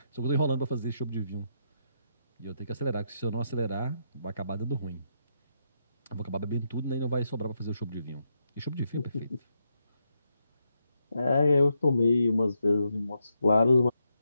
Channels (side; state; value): both; inverted; correlation -0.81